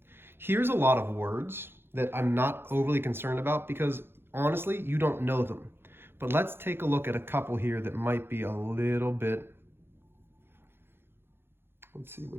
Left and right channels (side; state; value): left; late; 0.11 ms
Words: Here's a lot of words that I'm not overly concerned about because honestly, you don't know them. But let's take a look at a couple here that might be a little bit, let's see